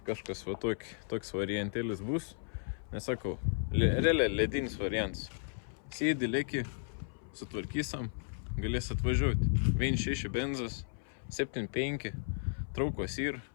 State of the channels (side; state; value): right; silent; 55 dB below the other